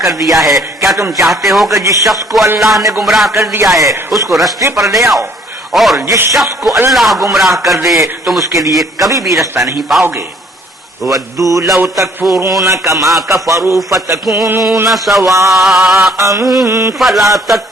کر دیا ہے؟ کیا تم چاہتے ہو کہ جس شخص کو اللہ نے گمراہ کر دیا ہے اس کو رستے پر لے آؤ، اور جس شخص کو اللہ گمراہ کر دے تم اس کے لیے کبھی بھی رستہ نہیں پاؤ گے۔ وَدُّوا لَوْ تَكْفُرُونَ كَمَا كَفَرُوا فَتَكُونُونَ سَوَاءً فَلَا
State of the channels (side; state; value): both; normal; correlation 0.60